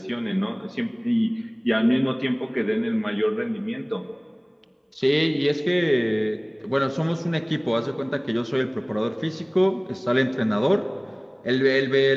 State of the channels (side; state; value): both; identical; correlation 1.00